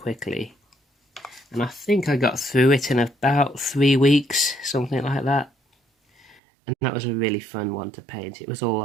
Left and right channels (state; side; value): drops out; left; at 6.4 s